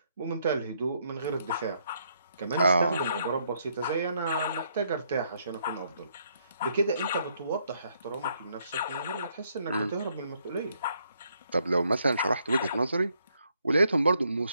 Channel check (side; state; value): both; inverted; correlation -0.72